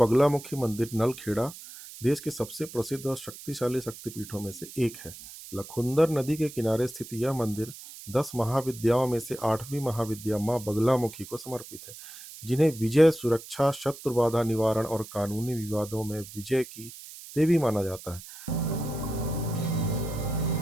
मंदिर नलखेड़ा देश के सबसे प्रसिद्ध और शक्तिशाली शक्तिपीठों में से एक है। लखुंदर नदी के किनारे स्थित यह मंदिर 10 महाविद्याओं में से 8वीं महाविद्या माँ बगलामुखी को समर्पित है, जिन्हें विजय, सुरक्षा, शत्रु बाधा निवारण और कानूनी विवादों में विजय की देवी माना जाता है।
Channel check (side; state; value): right; noise; hiss, 15 dB below the sound